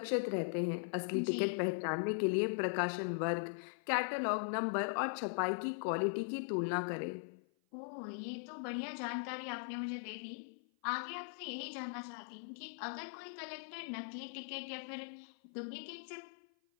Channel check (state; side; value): silent; right; 51 dB below the other